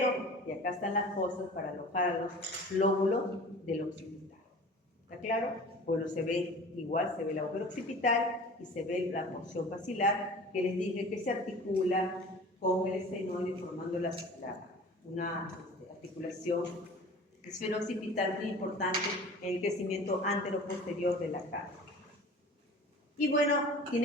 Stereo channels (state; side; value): normal; both; correlation 0.41